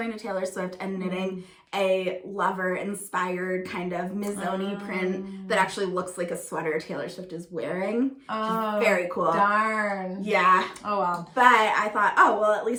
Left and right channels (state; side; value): identical; both; correlation 1.00